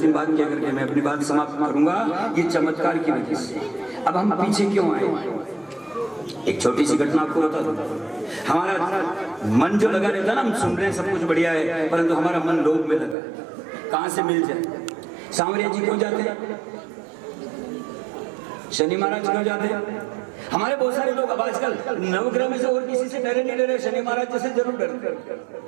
बात क्या करके मैं अपनी बात समाप्त करूंगा। ये चमत्कार की वजह से अब हम पीछे क्यों आए? एक छोटी सी घटना आपको बता दूं। हमारा मन जो लगा रहता है ना, हम सुन रहे हैं सब कुछ बढ़िया है, परंतु हमारा मन लोभ में लगा। कहां से मिल जाए? सांवरिया जी क्यों जाते हैं? शनि महाराज क्यों जाते हैं? हमारे बहुत सारे लोग अब आजकल नवग्रह में से और किसी से डरे नहीं डरे, शनि महाराज जैसे जरूर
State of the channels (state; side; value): drops out; left; at 13.2 s